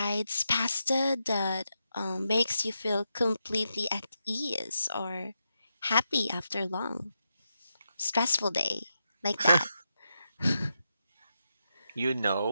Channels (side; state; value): both; inverted; correlation -0.86